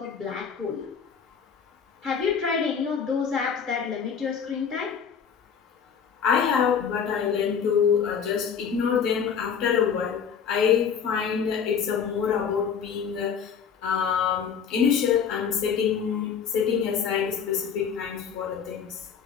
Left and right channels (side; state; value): right; quieter; 7.0 dB